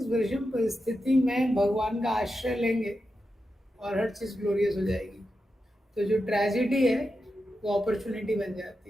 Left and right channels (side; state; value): both; normal; correlation 0.89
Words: विषम परिस्थिति में भगवान का आश्रय लेंगे और हर चीज ग्लोरियस हो जाएगी। तो जो ट्रेजिडी है वो अपॉर्चुनिटी बन जाती